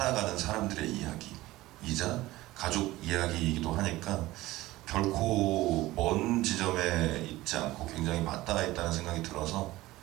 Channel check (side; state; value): left; quieter; 17.8 dB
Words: 사람들의 이야기이자 가족 이야기이기도 하니까 결코 먼 지점에 있지 않고 굉장히 맞닿아 있다는 생각이 들어서